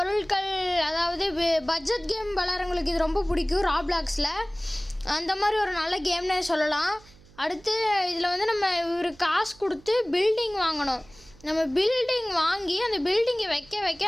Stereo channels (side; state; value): right; noise; hum, 25 dB below the sound